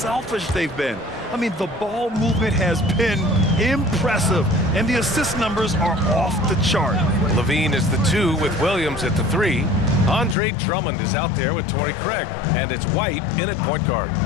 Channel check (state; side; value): drops out; right; at 10.4 s